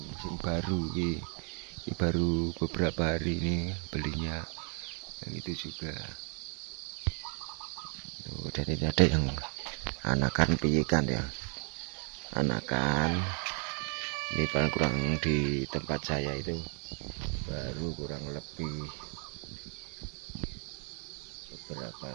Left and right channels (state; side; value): quieter; left; 39.7 dB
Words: baru ini baru beberapa hari ini belinya, yang itu juga. Dan ini ada yang anakan piikan ya, anakan ini paling kurang di tempat saya itu baru kurang lebih beberapa